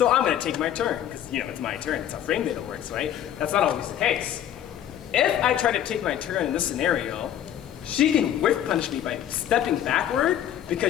I'm gonna take my turn, because it's my turn, it's how frame data works, right? That's not always the case. If I try to take my turn in this scenario, she can whiff punish me by stepping backward,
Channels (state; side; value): quieter; right; 10.8 dB